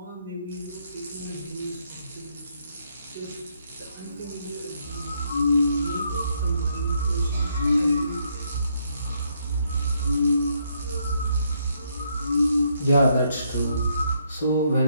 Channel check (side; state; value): both; inverted; correlation -0.73